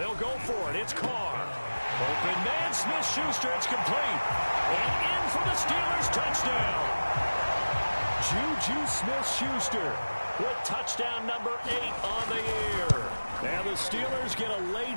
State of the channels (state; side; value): inverted; both; correlation -1.00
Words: go for it. It's Carr. Open man, Smith-Schuster. It's complete. And in for the Steelers touchdown. Juju Smith-Schuster with touchdown number 8 on the year. And the Steelers get a